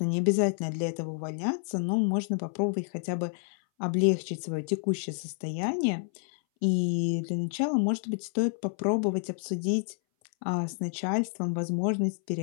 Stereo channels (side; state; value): right; silent; 58 dB below the other